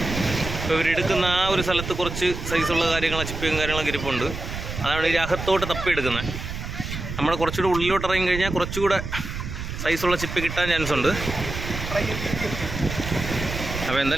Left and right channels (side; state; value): right; noise; rumble, 7 dB below the sound